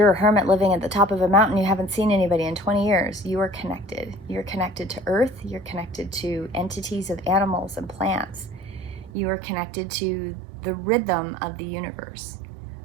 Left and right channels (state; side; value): drops out; left; at 9.1 s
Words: a hermit living at the top of a mountain, you haven't seen anybody in 20 years, you are connected. You're connected to earth. You're connected to entities of animals and plants. You are connected to the rhythm of the universe.